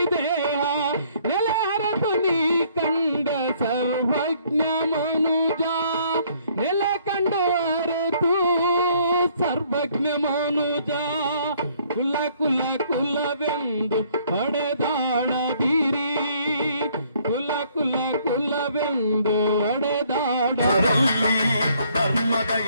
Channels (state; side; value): inverted; both; correlation -0.63